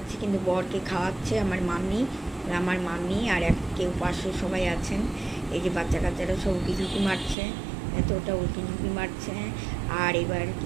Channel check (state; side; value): drops out; left; at 7.4 s